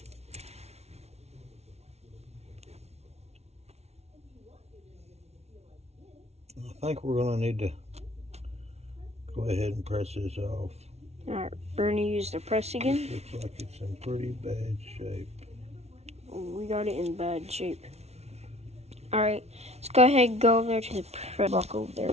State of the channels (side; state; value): left; late; 0.31 ms